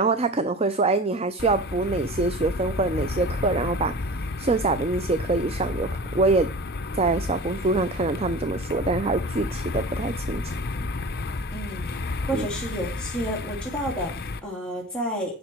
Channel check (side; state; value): both; normal; correlation 0.37